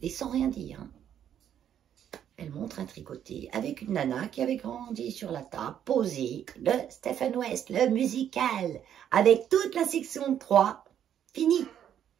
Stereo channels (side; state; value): left; quieter; 9.8 dB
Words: et sans rien dire. Hein. Elle montre un tricoté avec une nana qui avait grandi sur la table, posée, le Stephen West, le musical, avec toute la section 3, fini.